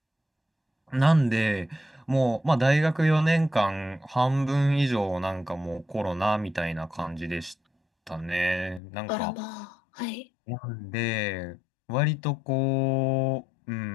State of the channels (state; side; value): drops out; right; at 8.8 s